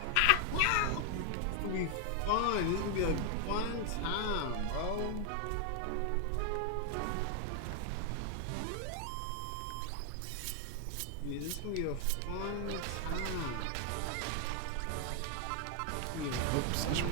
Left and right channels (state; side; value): different; both; correlation 0.00